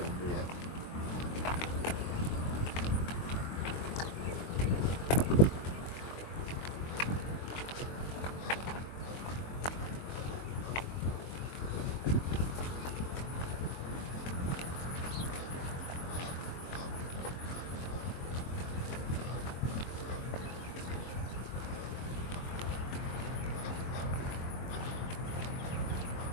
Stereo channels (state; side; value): late; right; 22 ms